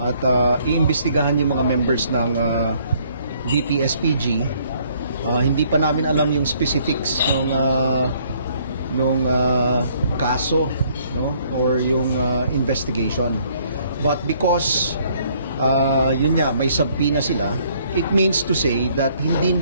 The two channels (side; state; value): both; inverted; correlation -0.64